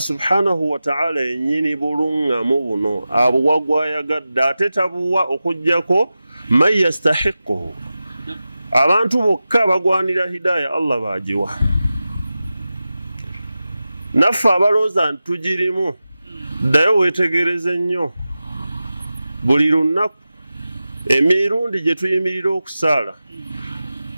subhanahu wa ta'ala yennyini buluŋŋamu buno abuwa gwayagadde, ate tabuwa okuggyako man yastahiquhu. Abantu bokka bagwanira hidaya Allah bagiwa. Naffe abalooza nti tugirimu, ddayo weetegereze nnyo buli lunaku emirundi gye tuyimirira okusaala,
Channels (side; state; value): both; inverted; correlation -0.94